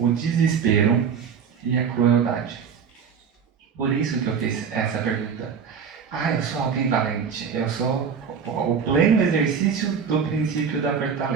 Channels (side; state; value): left; quieter; 6.7 dB